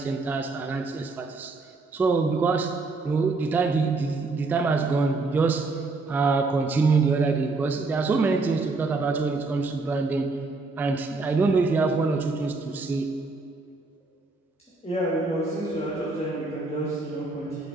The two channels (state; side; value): quieter; left; 3.7 dB